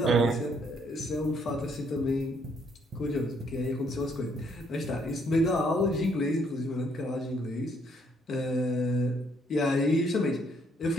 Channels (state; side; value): normal; both; correlation 0.69